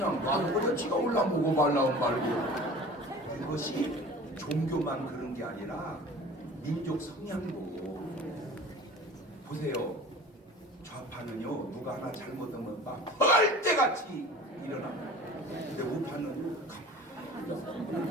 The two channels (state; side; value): normal; both; correlation 0.41